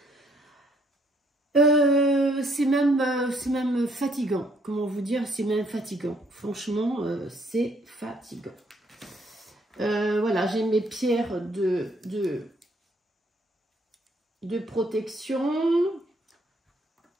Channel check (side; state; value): both; normal; correlation 0.67